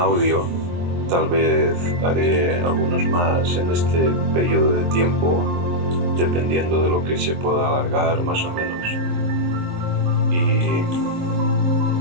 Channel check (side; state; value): left; late; 23 ms